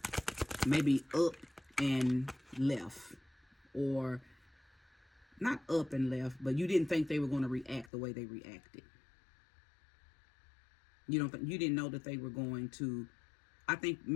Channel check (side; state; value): right; drops out; at 7.9 s